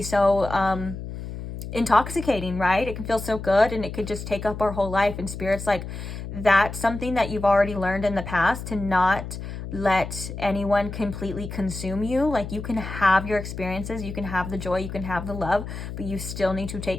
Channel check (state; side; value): noise; left; hum, 8 dB below the sound